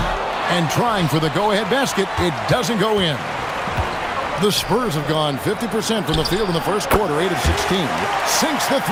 And trying for the go-ahead basket. It doesn't go in. The Spurs have gone 50% from the field in the first quarter, 8 of 16. Sinks the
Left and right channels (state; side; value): identical; both; correlation 1.00